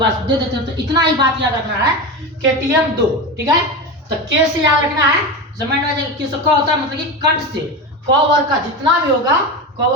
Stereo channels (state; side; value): normal; both; correlation 0.22